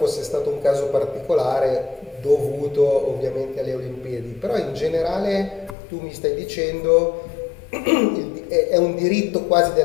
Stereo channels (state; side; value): drops out; right; at 5.8 s